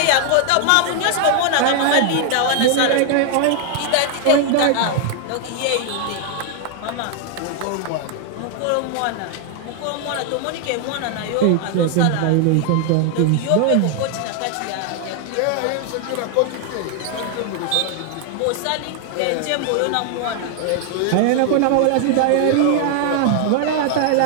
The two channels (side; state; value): both; different; correlation 0.00